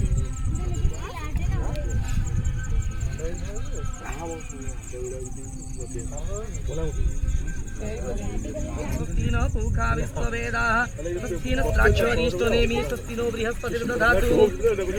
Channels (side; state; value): both; identical; correlation 1.00